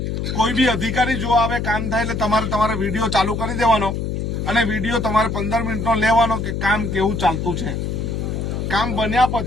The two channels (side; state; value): left; noise; hum, 2 dB below the sound